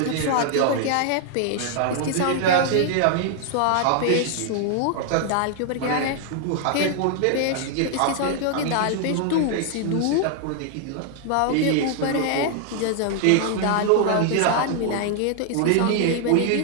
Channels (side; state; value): both; different; correlation 0.00